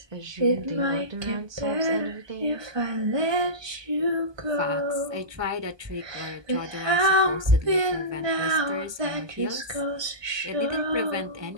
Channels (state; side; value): late; left; 1.2 ms